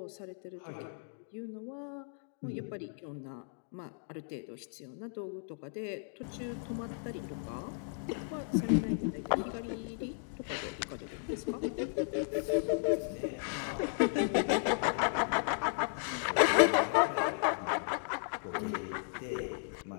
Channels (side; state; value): right; silent; digital silence